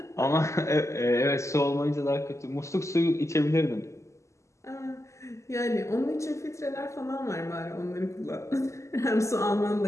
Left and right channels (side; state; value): right; late; 0.14 ms